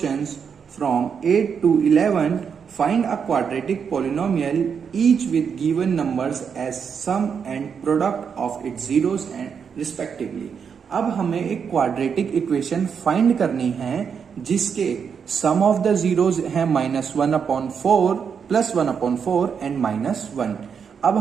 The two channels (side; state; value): left; quieter; 6.7 dB